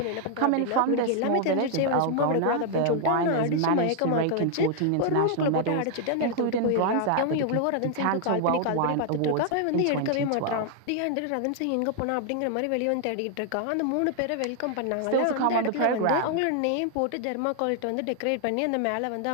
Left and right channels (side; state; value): both; different; correlation 0.00